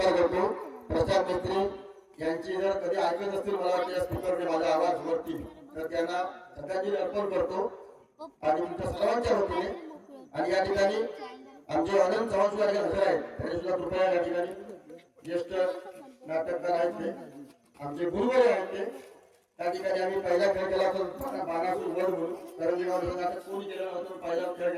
करतो। प्रशांत मिस्त्री यांची जर कधी ऐकत असतील, मला वाटतं या स्पीकरने माझा आवाज वरती, तर त्यांना श्रद्धांजली अर्पण करतो आणि तुमच्या सर्वांच्या वतीने। आणि या ठिकाणी आमचे आनंद चव्हाण सुद्धा हजर आहेत, त्यांनी सुद्धा कृपया या ठिकाणी ज्येष्ठ नाटककार आहेत, ते आमचे गुरुवारी आहेत। ते त्या ठिकाणी आम्ही पहिला खेळ केला होता बाणासूर वध म्हणून, करंजे गाव नाटक कोणी केलं नव्हतं, पहिला खेळ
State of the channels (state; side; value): identical; both; correlation 1.00